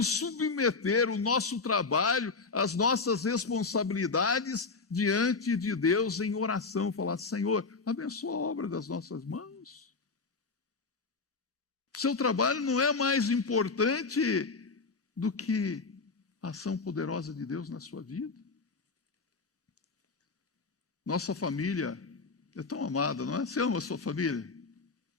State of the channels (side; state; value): right; quieter; 4.3 dB